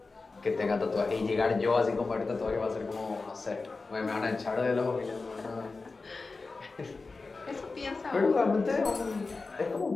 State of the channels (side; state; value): right; quieter; 3.9 dB